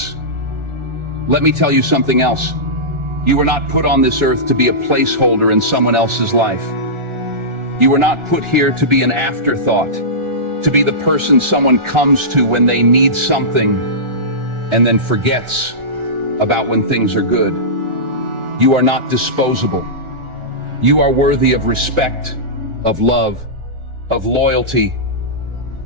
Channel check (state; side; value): late; left; 1.4 ms